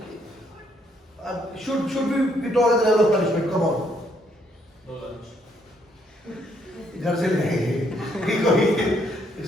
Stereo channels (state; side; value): normal; both; correlation 0.71